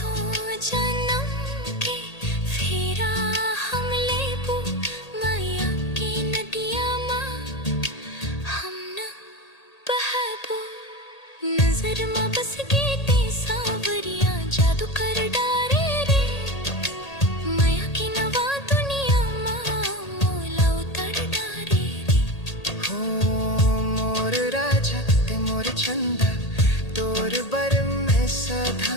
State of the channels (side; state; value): right; late; 1.8 ms